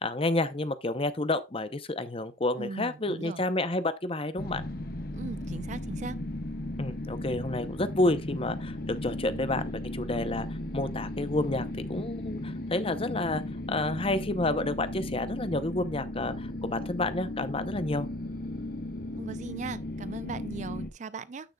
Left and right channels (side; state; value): both; normal; correlation 0.50